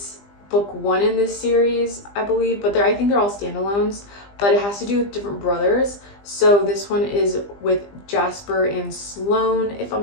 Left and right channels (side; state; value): right; late; 20 ms